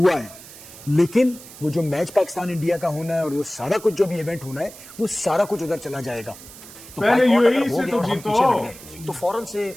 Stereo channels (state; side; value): noise; right; hiss, 17 dB below the sound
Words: है। लेकिन वो जो मैच पाकिस्तान इंडिया का होना है और वो सारा कुछ जो भी इवेंट होना है, वो सारा कुछ उधर चला जाएगा। तो यूएई से तो जीतो, तो फौरन से